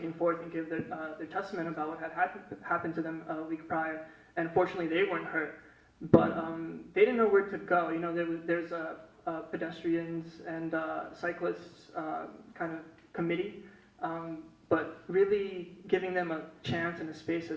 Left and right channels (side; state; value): both; identical; correlation 1.00